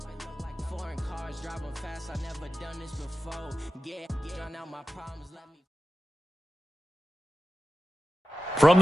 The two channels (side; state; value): both; normal; correlation 0.94